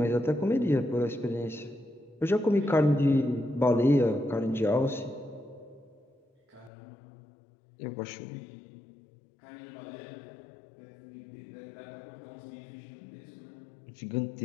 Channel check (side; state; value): right; drops out; at 6.7 s